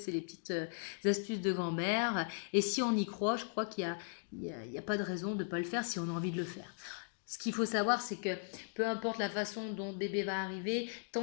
les petites astuces de grand-mère, et si on y croit, je crois qu'il y a pas de raison de ne pas le faire si on a envie de le faire. Ce qu'il faut savoir, c'est que peu importe la façon dont le bébé va arriver,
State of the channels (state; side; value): silent; right; digital silence